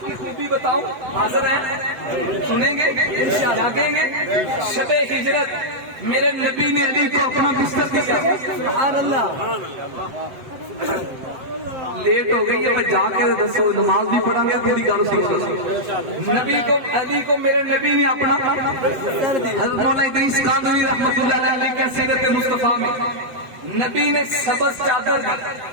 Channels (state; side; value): late; left; 8.0 ms